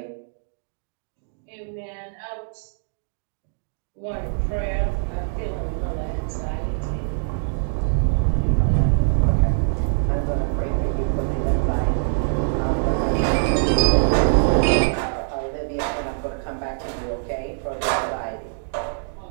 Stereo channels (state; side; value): silent; left; digital silence